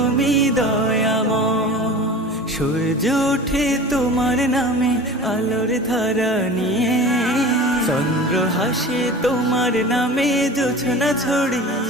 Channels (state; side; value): normal; both; correlation 0.37